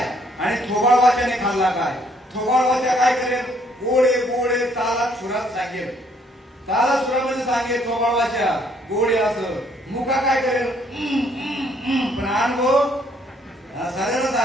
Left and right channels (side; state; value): both; normal; correlation 0.66